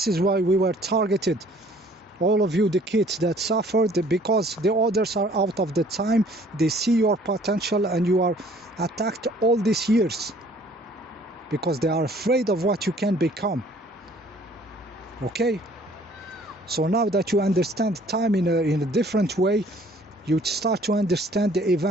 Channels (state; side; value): normal; both; correlation 0.57